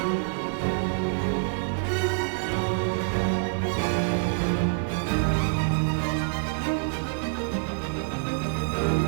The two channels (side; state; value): left; silent; 60 dB below the other